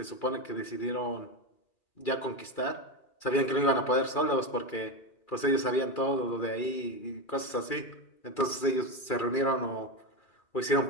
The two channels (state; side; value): late; right; 2.4 ms